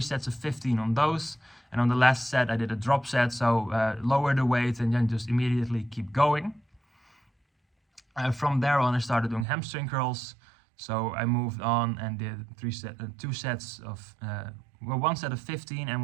sets of 15 on those. And on the last set, I did a drop set. So lower the weight and then just immediately keep going. From there on, I started doing hamstring curls. So I moved on and did 2 sets of, 1 set of 15 and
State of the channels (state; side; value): drops out; left; at 9.5 s